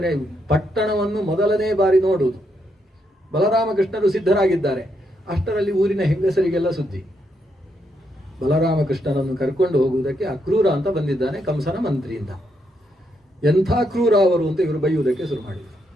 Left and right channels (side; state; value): both; normal; correlation 0.78